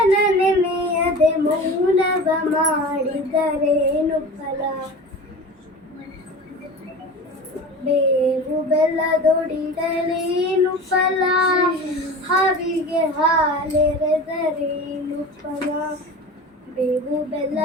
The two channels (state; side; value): normal; both; correlation 0.35